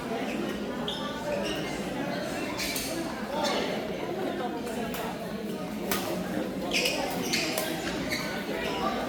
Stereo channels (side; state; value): both; identical; correlation 1.00